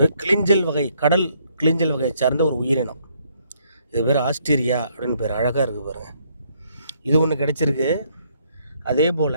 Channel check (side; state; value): both; inverted; correlation -0.70